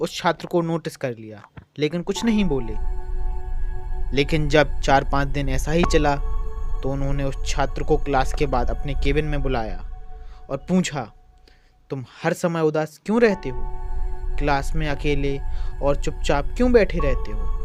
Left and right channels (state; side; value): identical; both; correlation 1.00